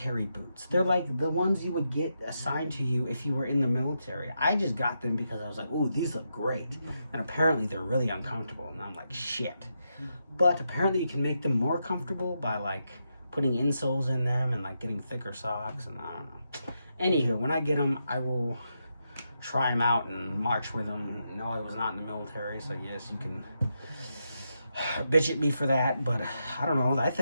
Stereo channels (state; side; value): inverted; both; correlation -0.84